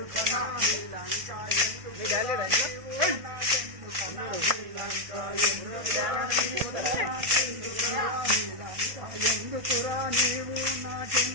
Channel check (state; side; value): late; left; 1.6 ms